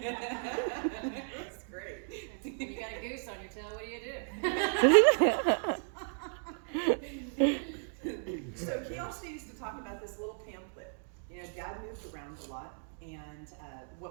That's great. When you got a goose on your tail, what do you do? So he also used to talk about this little pamphlet. You know, Dad moved around a lot, and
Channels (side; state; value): left; silent; 55 dB below the other